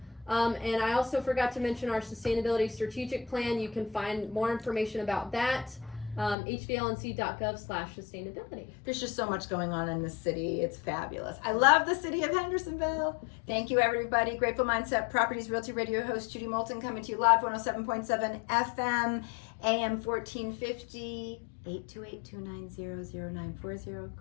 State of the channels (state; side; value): drops out; right; at 6.4 s